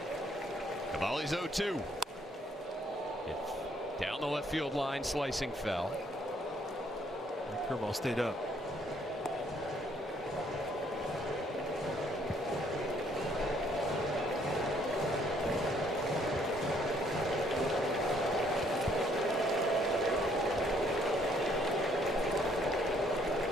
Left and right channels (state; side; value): normal; both; correlation 0.66